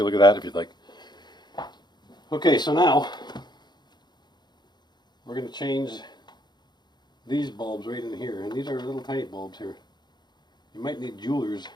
look at that if you'd like. Okay, so now we're going to change these bulbs right in here, and these are little tiny bulbs here. You might need a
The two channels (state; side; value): late; right; 0.21 ms